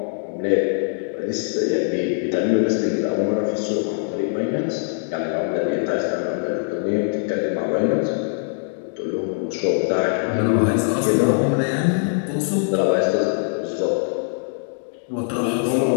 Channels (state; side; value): silent; right; digital silence